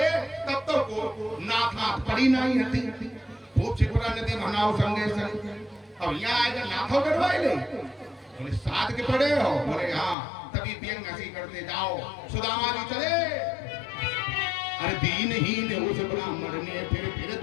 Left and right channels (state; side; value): drops out; right; at 10.2 s